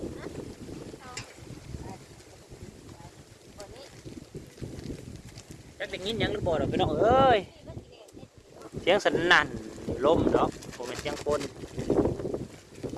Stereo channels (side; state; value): both; identical; correlation 1.00